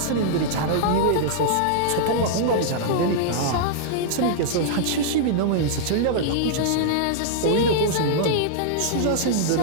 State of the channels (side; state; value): both; different; correlation -0.02